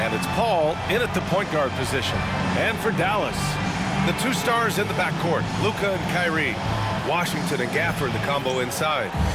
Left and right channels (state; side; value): identical; both; correlation 1.00